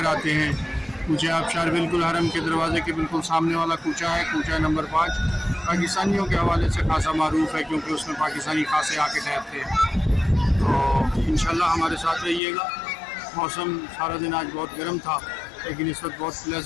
آتے ہیں۔ کوچہ آبشار بالکل حرم کے دروازے کے بالکل سامنے والا کوچہ ہے، کوچہ نمبر 5۔ پاکستانیوں کے حوالے سے خاصا معروف ہے کیونکہ اس میں پاکستانی خاصے آ کے ٹھہرتے ہیں۔ تو انشاءاللہ ہمارے ساتھ رہیے گا۔ موسم سارا دن آج بہت گرم تھا لیکن اس وقت بہت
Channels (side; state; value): right; drops out; at 12.4 s